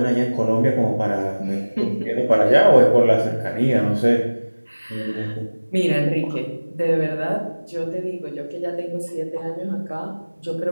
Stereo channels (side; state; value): both; inverted; correlation -1.00